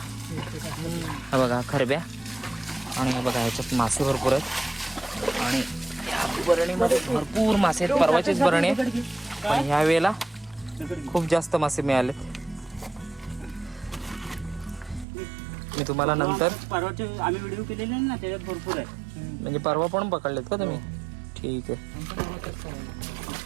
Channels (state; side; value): drops out; left; at 15.1 s